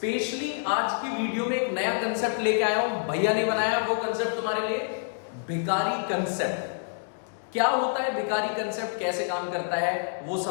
आज की वीडियो में एक नया कंसेप्ट लेके आया हूं, भैया ने बनाया वो कंसेप्ट तुम्हारे लिए, भिखारी कंसेप्ट। क्या होता है भिखारी कंसेप्ट, कैसे काम करता है वो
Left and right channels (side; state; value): right; silent; digital silence